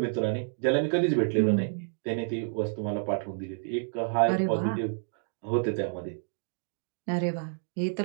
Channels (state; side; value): silent; left; digital silence